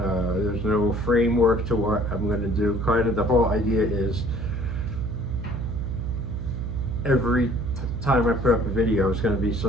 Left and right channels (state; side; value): noise; right; hum, 3 dB below the sound